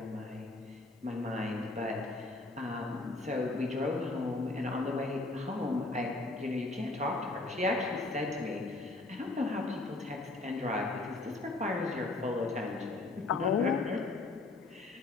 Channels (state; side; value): quieter; right; 3.1 dB